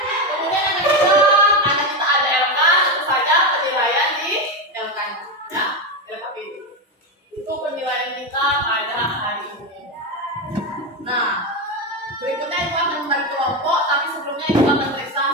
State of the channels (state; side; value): normal; both; correlation 0.13